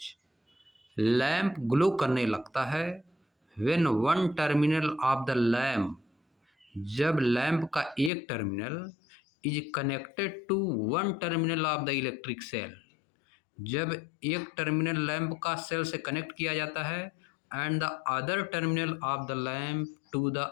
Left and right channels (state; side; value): drops out; right; at 8.1 s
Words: lamp glow करने लगता है when one terminal of the lamp, जब लैम्प का एक terminal is connected to one terminal of the electric cell, जब एक टर्मिनल लैम्प का सेल से कनेक्ट किया जाता है and the other terminal of the lamp to the